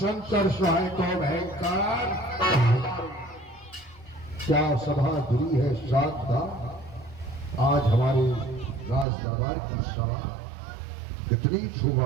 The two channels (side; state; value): left; drops out; at 9.1 s